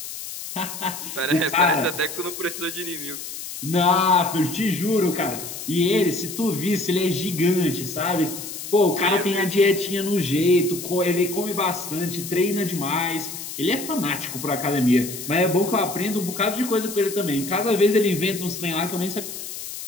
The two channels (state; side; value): noise; left; hiss, 9 dB below the sound